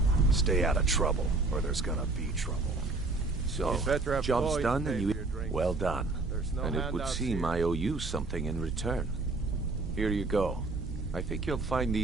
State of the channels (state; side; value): quieter; left; 3.4 dB